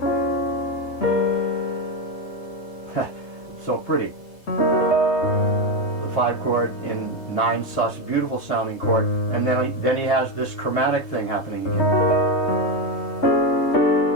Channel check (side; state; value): right; late; 3.3 ms